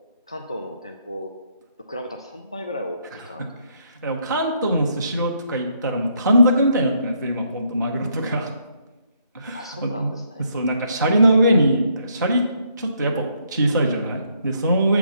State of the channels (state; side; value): inverted; both; correlation -0.72